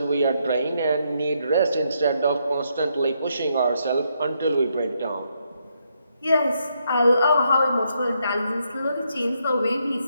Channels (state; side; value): inverted; both; correlation -0.77